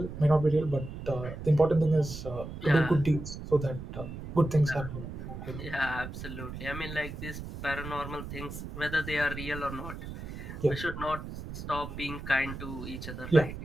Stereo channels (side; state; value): right; noise; rumble, 9 dB below the sound